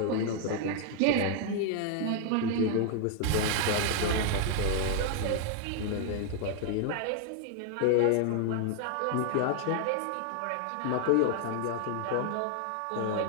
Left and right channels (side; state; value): both; different; correlation 0.00